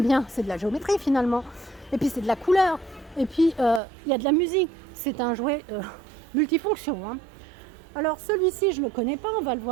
c'est de la géométrie finalement. Et puis, c'est de la couleur. Et puis, il y a de la musique. C'est un jouet multifonction. Alors, celui-ci, je ne le connais pas. On va le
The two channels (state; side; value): drops out; left; at 3.8 s